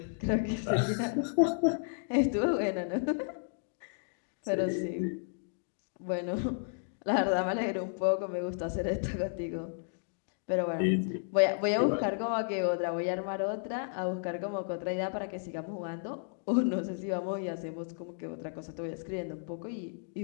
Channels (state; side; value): silent; right; digital silence